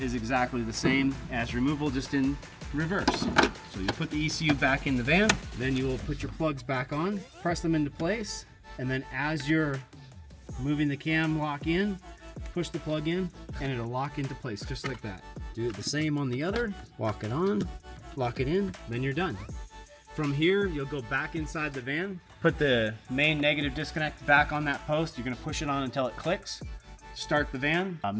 exactly the same as removal, just in reverse. So you put the ECU back in the van, then you will put your plugs back on, press them into place, and then as you're moving the cam lock in, push the plug in, and it'll lock into place just like that. Do it the same on the other, walk it on, lock it in, then you're done. From here, you'll go back inside the van, put the main negative disconnect back on that post. You're gonna push it on until it clicks. Start the van,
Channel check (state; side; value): identical; both; correlation 1.00